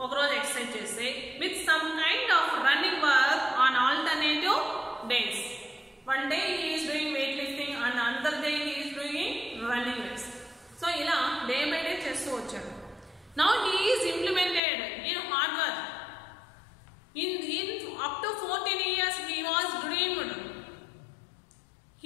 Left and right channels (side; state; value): right; drops out; at 14.6 s